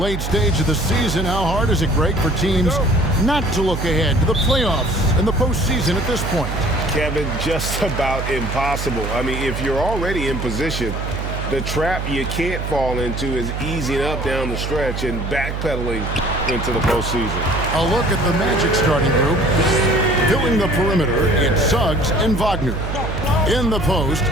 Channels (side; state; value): right; noise; hum, 4 dB below the sound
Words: stage of the season, how hard is it, Greg, for teams not to look ahead to the playoffs and the postseason at this point? Kevin, just about impossible. I mean, if you're already in position, the trap you can't fall into is easing up down the stretch and backpedaling into the postseason. A look at the Magic starting group. Filling the perimeter, it's Suggs and Wagner. In the post,